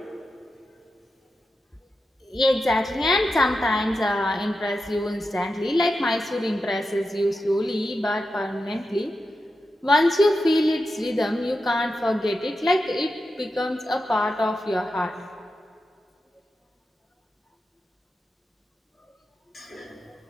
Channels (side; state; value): both; normal; correlation 0.90